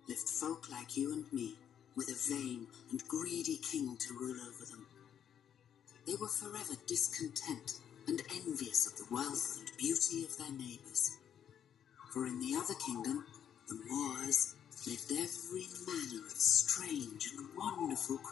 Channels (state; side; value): quieter; right; 9.0 dB